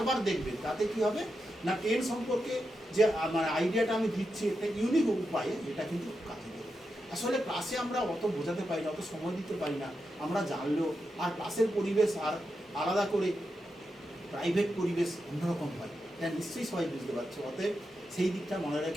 দেখবে. তাতে কী হবে না, টেন সম্পর্কে যে মানে আইডিয়াটা আমি দিচ্ছি একটা ইউনিক উপায়ে, এটা কিন্তু কাজে দেবে. আসলে ক্লাসে আমরা অত বোঝাতে পারি না, অত সময় দিতে পারি না, আমরা জানলেও, আর ক্লাসের পরিবেশ আর আলাদা করে প্রাইভেট পরিবেশ অন্যরকম হয়, এটা নিশ্চয়ই সবাই বুঝতে পারছো। অতএব সেই দিকটা মনে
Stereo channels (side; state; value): both; normal; correlation 0.87